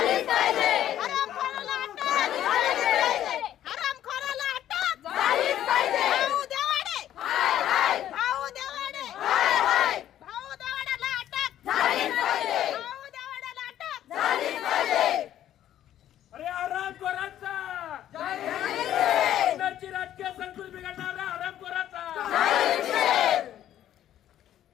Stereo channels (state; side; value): quieter; right; 11.7 dB